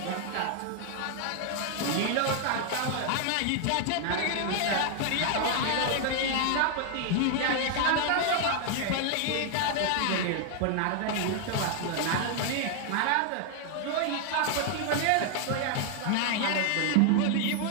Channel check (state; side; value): different; both; correlation 0.00